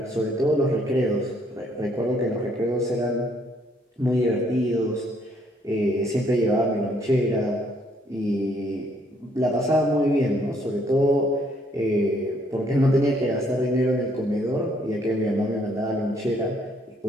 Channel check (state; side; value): normal; both; correlation 0.67